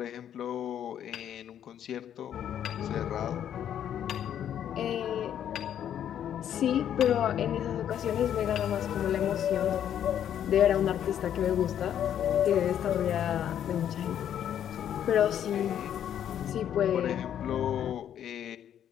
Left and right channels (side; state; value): right; quieter; 9.9 dB